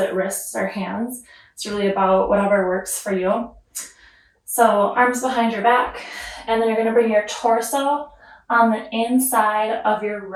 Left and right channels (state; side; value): identical; both; correlation 1.00